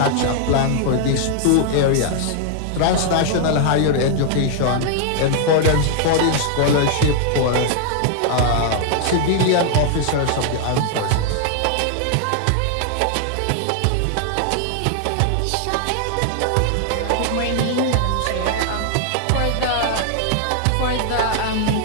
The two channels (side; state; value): both; different; correlation 0.00